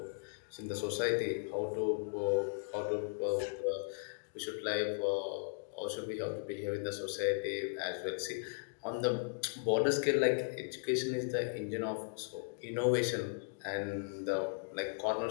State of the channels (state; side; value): silent; right; digital silence